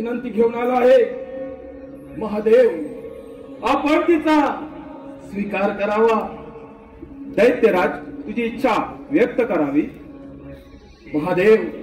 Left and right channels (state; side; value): identical; both; correlation 1.00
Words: घेऊन आला आहे. महादेव, आपण तिचा स्वीकार करावा. दैत्यराज, तुझी इच्छा व्यक्त करावी. महादेव,